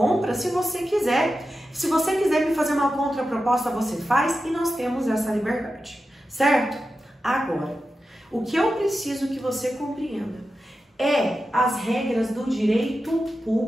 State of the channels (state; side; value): normal; both; correlation 0.91